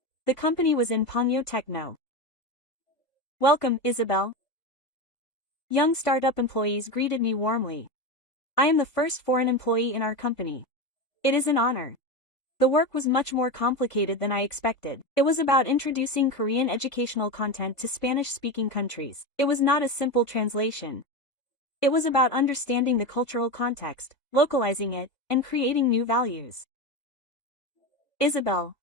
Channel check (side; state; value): right; late; 1.5 ms